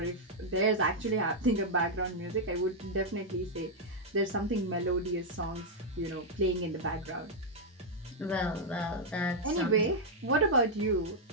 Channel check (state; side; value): normal; both; correlation -0.03